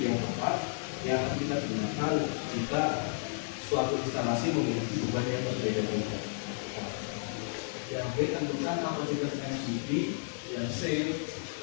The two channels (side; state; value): right; silent; digital silence